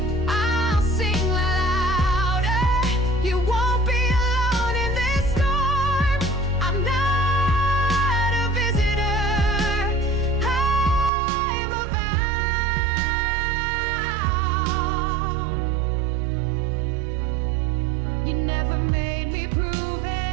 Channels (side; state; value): left; drops out; at 11.1 s